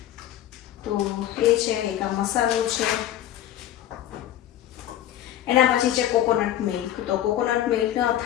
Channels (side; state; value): right; quieter; 12.1 dB